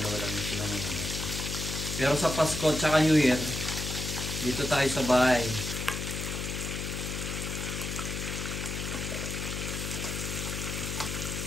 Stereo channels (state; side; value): noise; left; hum, 4 dB below the sound